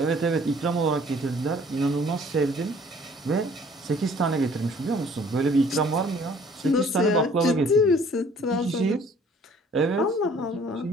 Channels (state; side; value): normal; both; correlation 0.55